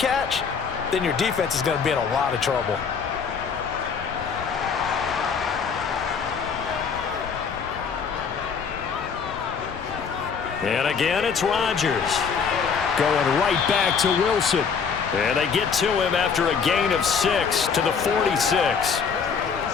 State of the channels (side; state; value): right; quieter; 6.1 dB